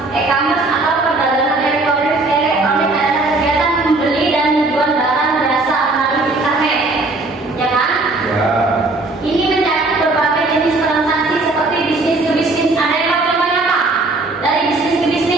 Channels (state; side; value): quieter; left; 3.2 dB